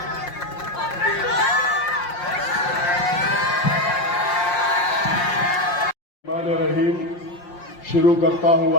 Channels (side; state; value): right; late; 5.6 ms